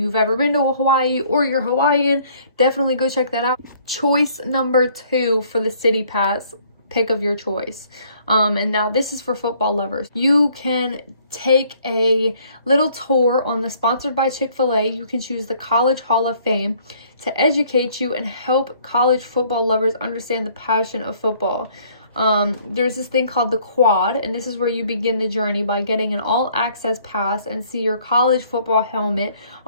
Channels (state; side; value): inverted; both; correlation -0.60